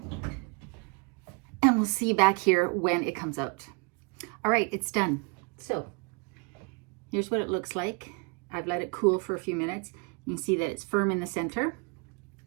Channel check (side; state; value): left; quieter; 34.0 dB